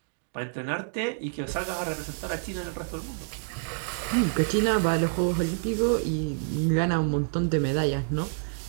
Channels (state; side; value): silent; left; digital silence